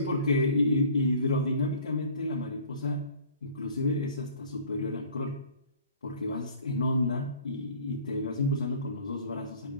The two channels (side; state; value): both; inverted; correlation -0.49